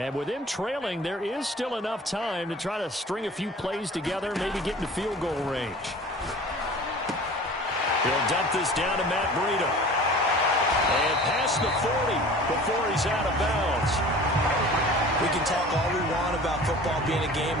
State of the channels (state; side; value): normal; both; correlation 0.42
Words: with them trailing, there is still enough time to try to string a few plays together, maybe get into field goal range. He'll dump this down to Matt Breida. And past the 40 before he's out of bounds. We can talk all we want about football being a game